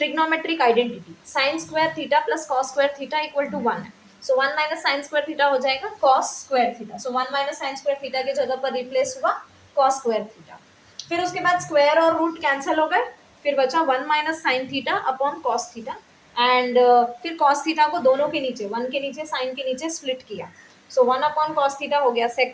identity sine square theta plus cos square theta equal to 1 है। So 1 minus sine square theta हो जाएगा cos square theta. So 1 minus sine square theta की जगह पर replace हुआ कॉस स्क्वायर थीटा। फिर उसके बाद स्क्वायर और रूट कैंसिल हो गए, फिर बचा 1 minus sine theta upon cos theta and फिर कॉस थीटा को दोनों के नीचे 1 के नीचे साइन के नीचे स्प्लिट किया। सो 1 अपॉन कॉस थीटा हो गया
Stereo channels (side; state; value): both; identical; correlation 1.00